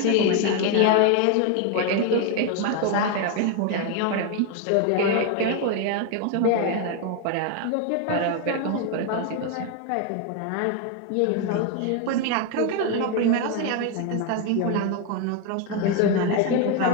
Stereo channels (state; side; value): different; both; correlation 0.01